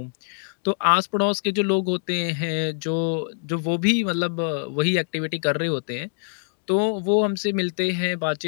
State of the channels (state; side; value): silent; right; digital silence